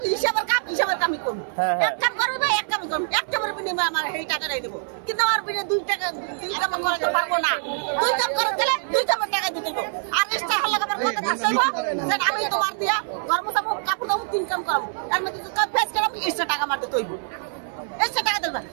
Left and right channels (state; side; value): silent; left; 59 dB below the other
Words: হিসাবের কামই করব এক কাম করবে এক কাম করব এক কামের বিনিময়ে আমার এই টাকা দেব কিন্তু আমার বিনে দুই কাম করতে পারবো না দুই কাম করে দিলে দুই কামের টাকা দিতে দেব আর এক্সট্রা হলে আমার কথা থাকবে যে আমি তোমার দিয়া কর্মচাম কাপড় দাও তিন কাম করব আর মধ্যে যদি কাজ ফেস করব এক্সট্রা টাকা মারতে তৈব এক্সট্রা টাকা দেব